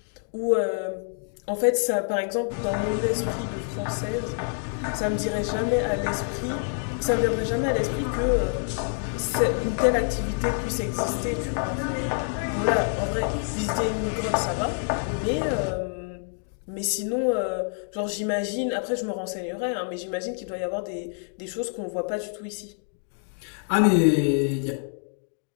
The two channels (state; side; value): silent; right; 60 dB below the other